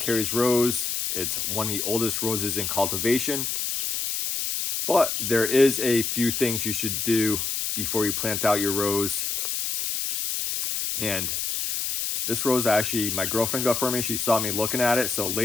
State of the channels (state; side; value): noise; left; hiss, 1 dB below the sound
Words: Rose. It's one of the oldest roses in cultivation. But there is a few things you should do before you plant out your rose. And this rose, actually, my girlfriend got for me. She saw me looking at it. So